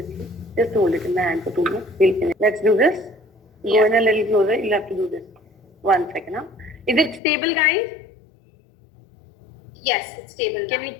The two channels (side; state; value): right; drops out; at 7.2 s